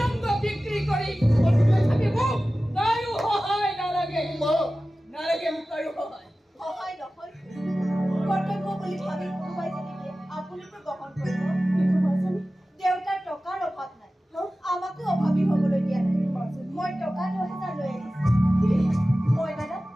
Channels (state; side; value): normal; both; correlation 0.96